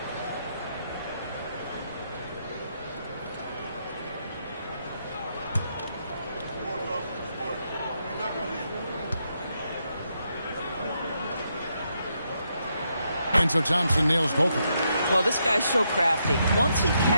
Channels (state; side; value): inverted; both; correlation -0.80